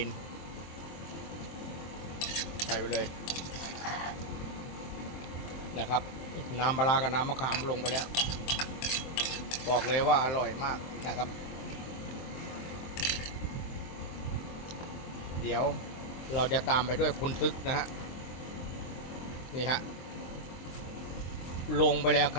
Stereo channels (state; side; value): late; right; 23 ms